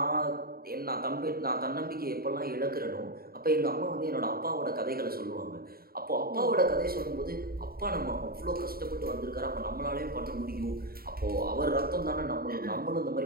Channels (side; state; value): left; late; 0.43 ms